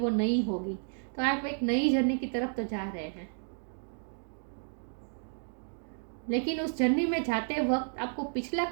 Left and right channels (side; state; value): left; silent; 56 dB below the other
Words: नई होगी। तो आप एक नई जर्नी की तरफ तो जा रहे हैं, लेकिन उस जर्नी में जाते वक्त आपको पिछला